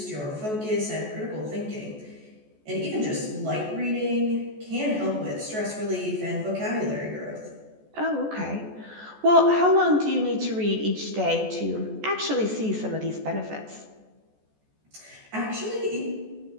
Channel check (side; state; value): left; late; 14 ms